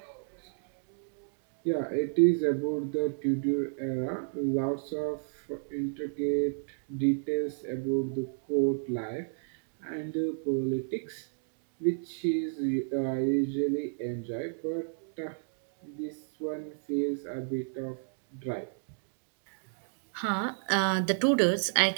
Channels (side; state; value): left; silent; digital silence